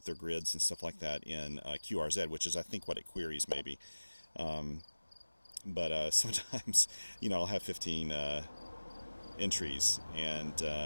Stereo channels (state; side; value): inverted; both; correlation -1.00